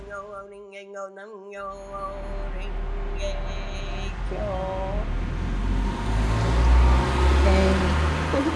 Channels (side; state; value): both; identical; correlation 1.00